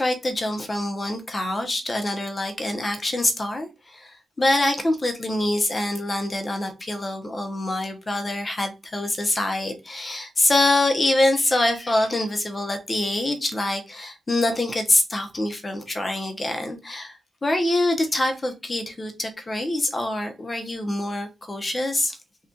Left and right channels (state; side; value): normal; both; correlation 0.92